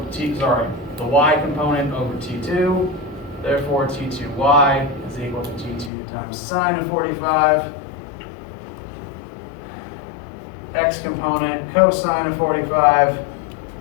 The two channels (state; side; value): drops out; right; at 5.9 s